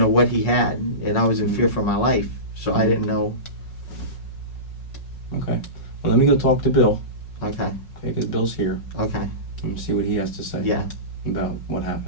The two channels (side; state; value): right; late; 5.4 ms